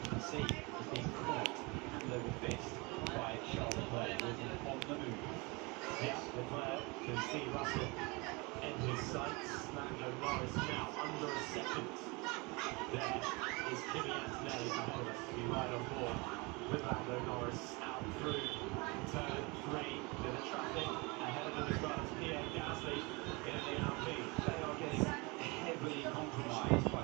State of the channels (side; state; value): left; quieter; 27.1 dB